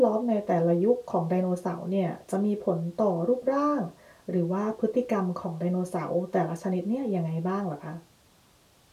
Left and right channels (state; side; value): identical; both; correlation 1.00